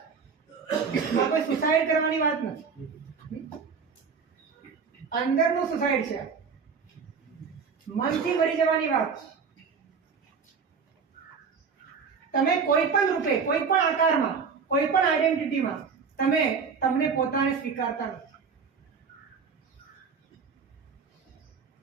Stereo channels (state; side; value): quieter; left; 5.7 dB